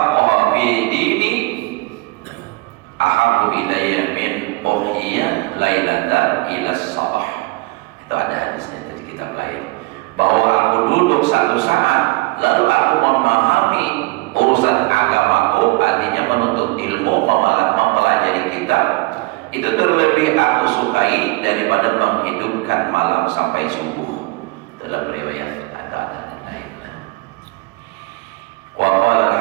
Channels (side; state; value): left; quieter; 23.7 dB